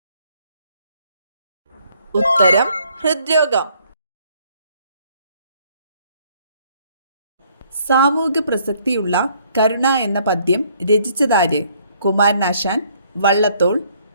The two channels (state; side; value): inverted; both; correlation -0.65